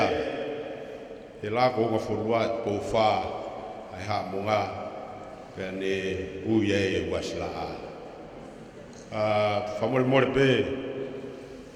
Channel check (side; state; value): both; identical; correlation 1.00